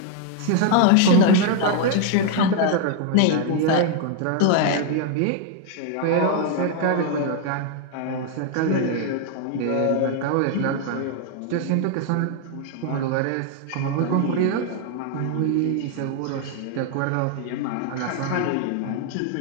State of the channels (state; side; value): different; both; correlation 0.00